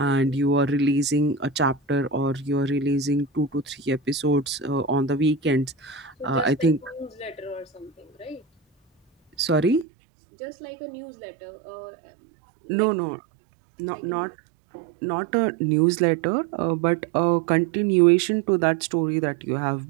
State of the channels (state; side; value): drops out; left; at 9.9 s